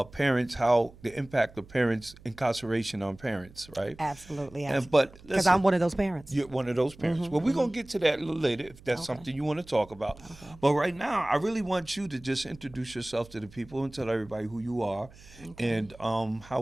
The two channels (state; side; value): noise; right; hum, 22 dB below the sound